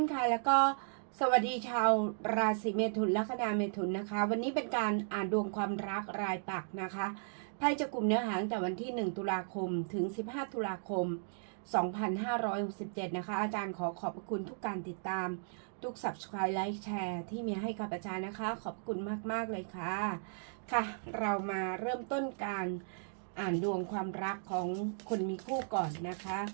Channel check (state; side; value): silent; left; digital silence